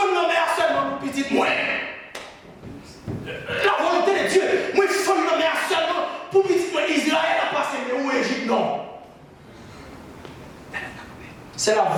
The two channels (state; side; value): identical; both; correlation 1.00